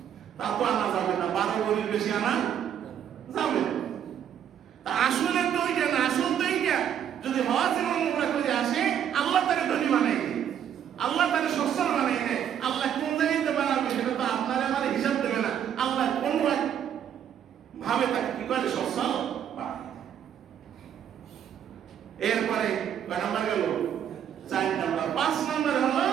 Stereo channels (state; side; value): quieter; left; 9.3 dB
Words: তা তো আনা যাবে না, 12 ভরির বেশি আনা যাবে না। আসলে তো ওইটা না, আসল তো এইটা। যদি হজ এবং উমরা করে আসে, আল্লাহ তাকে ধনী বানাই দেয়, আল্লাহ তাকে সচ্ছল বানাই দেয়। আল্লাহ কোন জায়গাতে বানাবে সেটা তো আপনার আমার হিসাব দেবে না। আল্লাহ কোন ভাবে তাকে কি করে সচ্ছল বানায়। এরপরে কয় নাম্বার গেল? 4 নাম্বার। 5 নাম্বার হলো